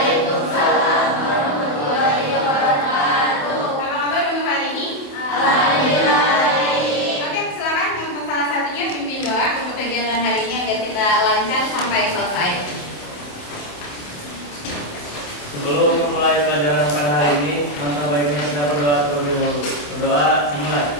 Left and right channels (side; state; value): right; late; 27 ms